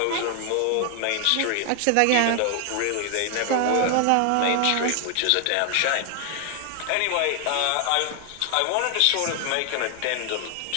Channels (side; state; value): both; different; correlation 0.00